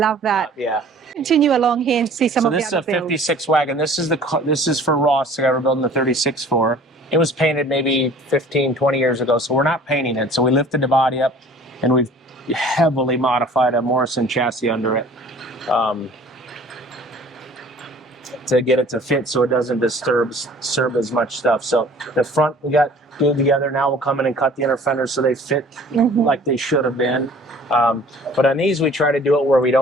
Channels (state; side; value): normal; both; correlation 0.49